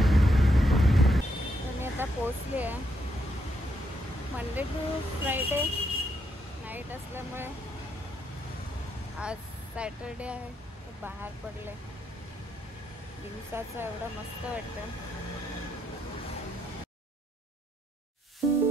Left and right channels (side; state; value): both; normal; correlation 0.77